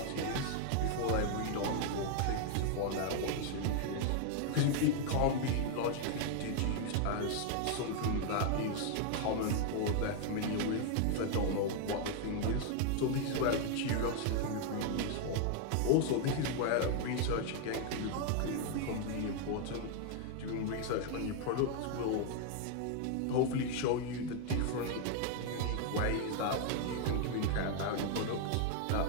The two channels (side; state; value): both; different; correlation 0.00